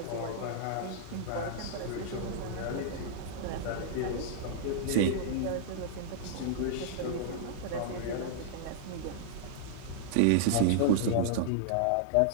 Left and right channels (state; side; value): different; both; correlation -0.01